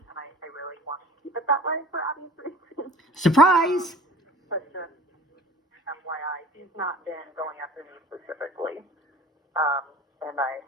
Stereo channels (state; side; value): normal; both; correlation 0.45